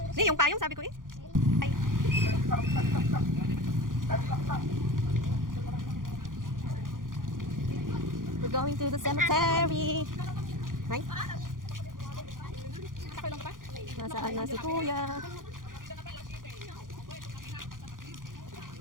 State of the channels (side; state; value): left; late; 0.90 ms